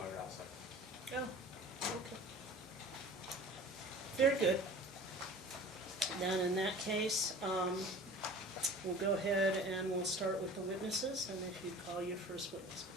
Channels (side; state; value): both; normal; correlation 0.41